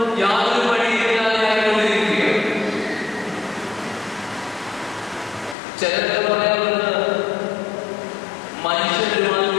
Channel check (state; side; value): drops out; right; at 5.6 s